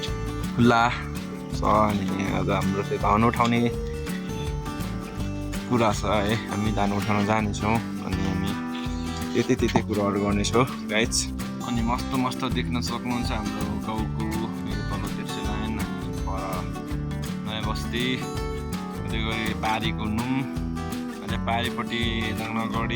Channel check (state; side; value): identical; both; correlation 1.00